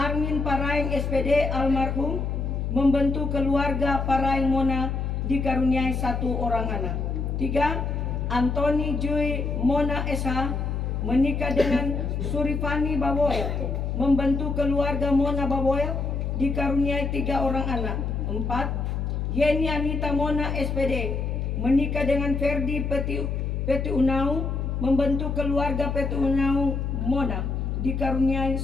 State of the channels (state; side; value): noise; left; hum, 1 dB below the sound